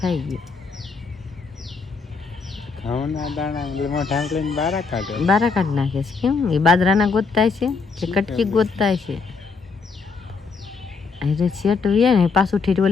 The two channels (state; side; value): quieter; right; 4.8 dB